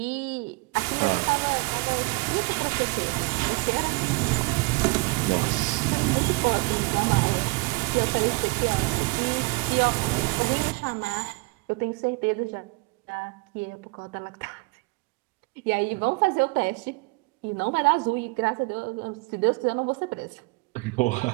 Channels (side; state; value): left; quieter; 27.9 dB